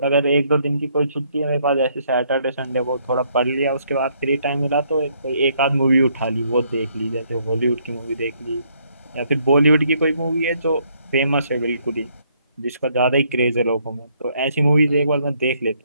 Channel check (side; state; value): both; inverted; correlation -0.69